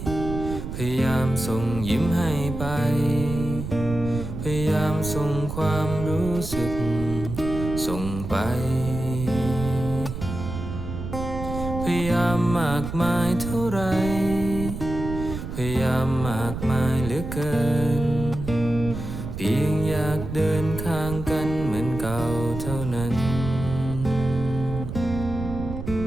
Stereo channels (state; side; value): noise; right; rumble, 7 dB below the sound